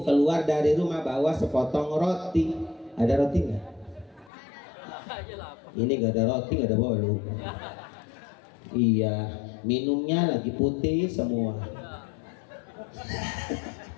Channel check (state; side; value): drops out; right; at 4.3 s